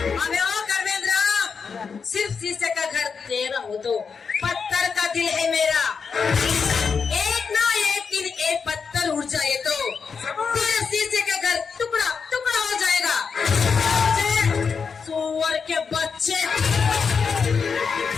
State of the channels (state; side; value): quieter; right; 5.7 dB